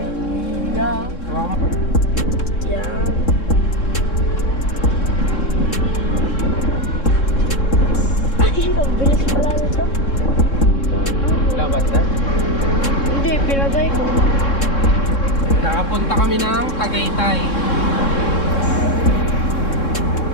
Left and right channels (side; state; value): right; late; 3.7 ms